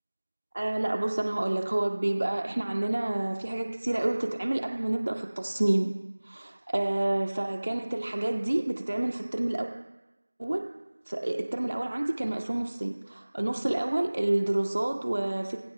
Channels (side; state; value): both; inverted; correlation -1.00